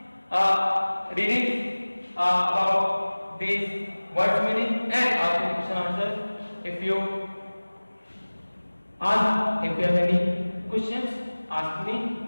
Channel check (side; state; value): both; inverted; correlation -1.00